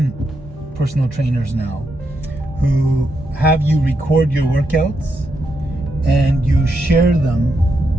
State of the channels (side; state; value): both; normal; correlation 0.82